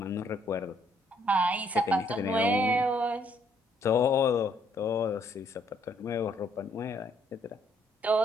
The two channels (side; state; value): both; normal; correlation 0.68